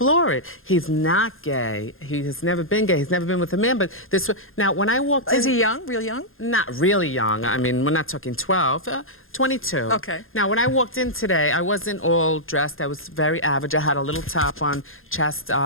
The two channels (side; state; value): right; late; 0.60 ms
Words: it. He's not gay. He has never been gay. He's never been with a man, but this. Now, when I walked in... Is he young? Real young? Not really young. I mean, we're not talking 12, 22. Okay. Now, when I walked in today, I wasn't all dressed. I was very average. I had a little top on, chest